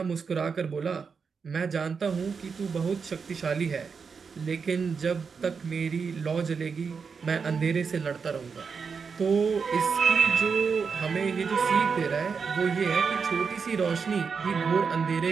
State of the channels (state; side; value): quieter; left; 5.6 dB